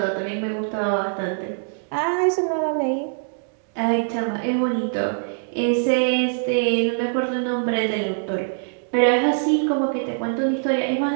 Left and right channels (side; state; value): left; silent; digital silence